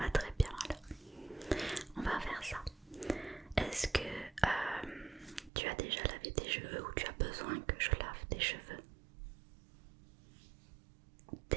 très bien alors. On va faire ça. Est-ce que tu as déjà lavé tes cheveux ou tu as besoin que je lave tes cheveux?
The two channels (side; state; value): left; drops out; at 5.5 s